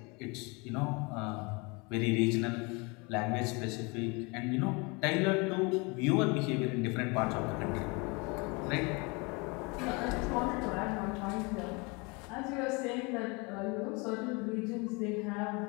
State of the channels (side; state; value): right; quieter; 28.8 dB